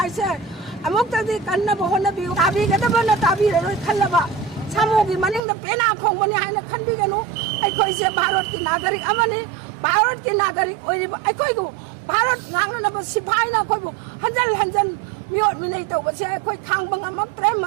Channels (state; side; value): drops out; left; at 5.4 s